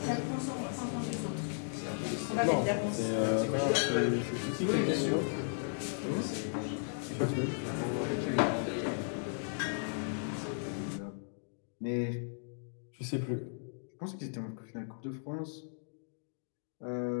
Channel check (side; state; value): right; silent; digital silence